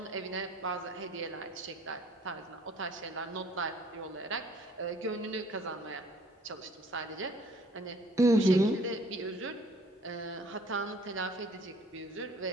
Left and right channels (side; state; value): both; normal; correlation 0.57